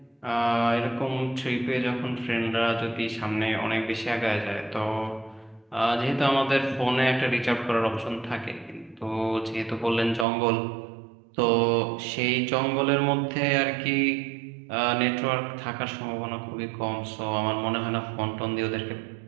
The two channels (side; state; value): left; drops out; at 10.2 s